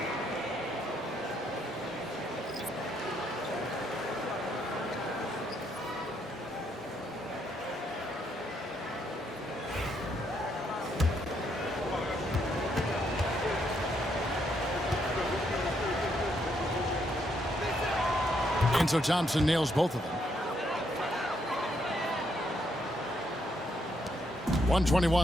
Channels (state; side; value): normal; both; correlation 0.75